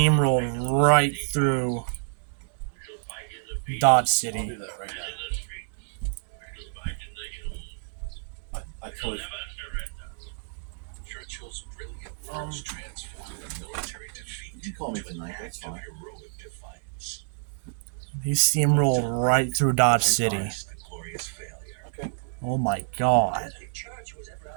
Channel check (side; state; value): left; silent; digital silence